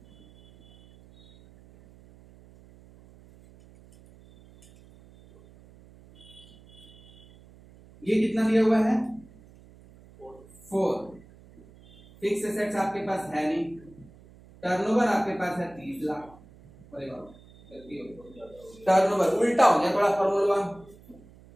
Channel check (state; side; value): noise; right; hum, 24 dB below the sound